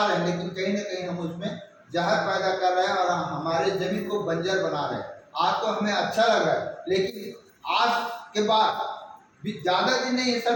रहे हैं, लेकिन कहीं ना कहीं हम उसमें जहर पैदा कर रहे हैं और हमारे जमीन को बंजर बना रहे हैं। आज तो हमें अच्छा लग रहा है, लेकिन आज के बाद भी ज़्यादा दिन नहीं है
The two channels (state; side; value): identical; both; correlation 1.00